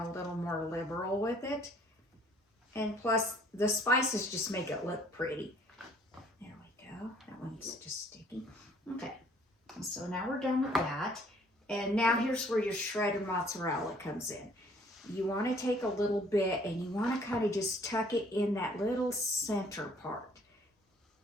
little more liberal with it. And plus, the spices just make it look pretty. There we go. That one's just sticky. Okay, so now we're done with that. And now here's where your shredded mozzarella comes in. You want to take a little bit and you want to kind of just tuck it in that little center part.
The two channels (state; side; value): normal; both; correlation 0.59